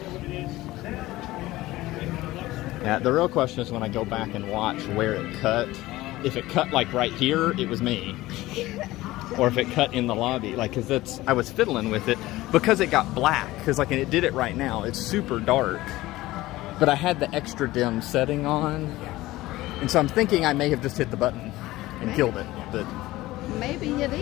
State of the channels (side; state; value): right; quieter; 17.7 dB